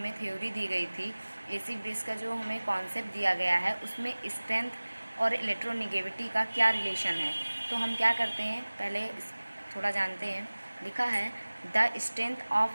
थ्योरी दी गई थी, एसिड बेस का जो हमें कॉन्सेप्ट दिया गया है, उसमें स्ट्रेंथ और इलेक्ट्रोनेगेटिविटी का क्या रिलेशन है। तो हम क्या करते हैं, पहले थोड़ा जानते हैं। लिखा है the strength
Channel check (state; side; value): inverted; both; correlation -1.00